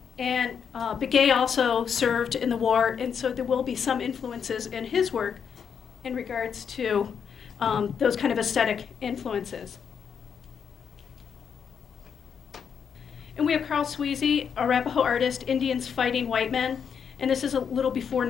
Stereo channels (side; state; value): right; quieter; 7.1 dB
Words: And Begay also served in the war, and so there will be some influences in his work in regards to those kind of aesthetic influences. And we have Carl Sweezy, Arapaho artist, Indians Fighting White Men, and this is a little before